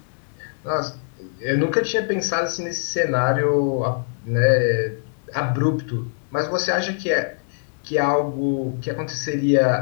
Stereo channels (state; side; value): silent; right; 64 dB below the other